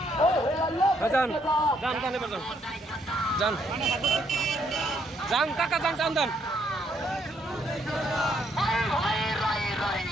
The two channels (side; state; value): both; normal; correlation 0.71